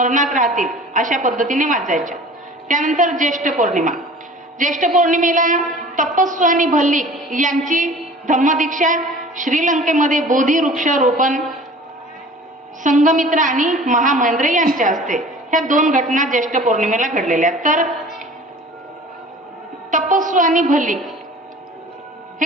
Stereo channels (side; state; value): both; normal; correlation 0.44